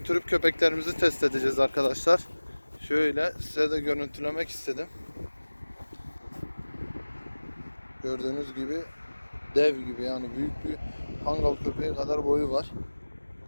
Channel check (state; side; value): inverted; both; correlation -1.00